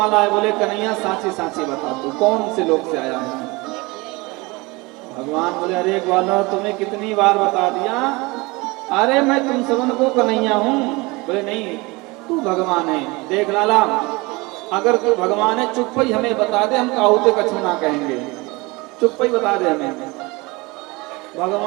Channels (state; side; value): quieter; left; 24.3 dB